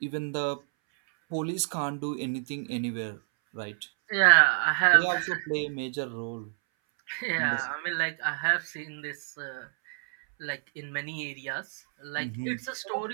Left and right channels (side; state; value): left; silent; 59 dB below the other